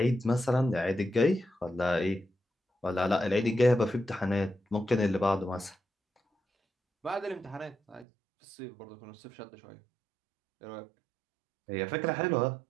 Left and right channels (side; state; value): left; drops out; at 8.1 s